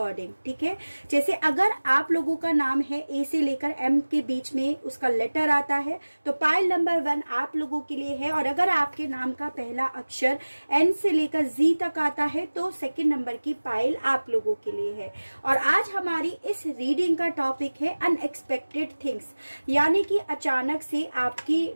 ठीक है, जैसे अगर आप लोगों का नाम है ए से लेकर एम के बीच में उसका लेटर आता है तो पाइल नंबर 1 आप लोगों के लिए है, और अगर आपके नाम का पहला अक्षर एन से लेकर जी तक आता है तो सेकंड नंबर की पाइल आप लोगों के लिए है। और आज हमारी इस रीडिंग का टॉपिक है अनएक्सपेक्टेड थिंग्स, यानी कि अचानक से आपकी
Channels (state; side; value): inverted; both; correlation -1.00